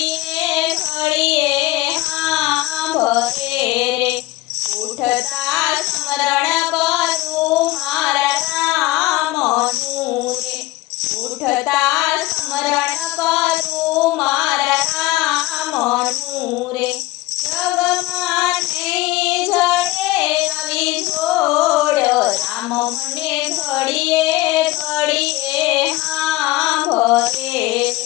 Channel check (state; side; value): quieter; right; 18.5 dB